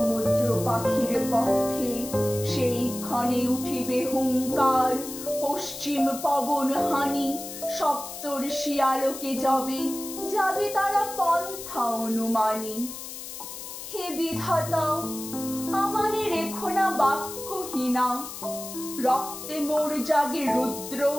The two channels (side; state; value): left; noise; hiss, 10 dB below the sound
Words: পাখির পক্ষে সেই ক্ষণে উঠিবে হুঙ্কার, পশ্চিম পবন হানি সপ্তর্ষি আলোকে যাবে যাবে তারা পন্থা অনুমানী। হে বিধাতা, আমারে রেখো না বাক্যহীনা, রক্তে মোর জাগে রুদ্র